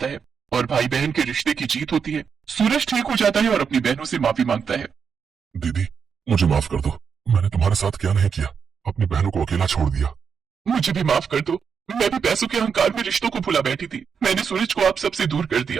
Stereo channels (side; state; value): left; quieter; 6.5 dB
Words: है और भाई बहन के रिश्ते की जीत होती है। सूरज ठीक हो जाता है और अपनी बहनों से माफी मांगता है। दीदी, मुझे माफ कर दो। मैंने तुम्हारे साथ क्या नहीं किया, अपनी बहनों को अकेला छोड़ दिया। मुझे भी माफ कर दो। मैं भी पैसों के अहंकार में रिश्तों को भुला बैठी थी। मैंने सूरज को आप सबसे दूर कर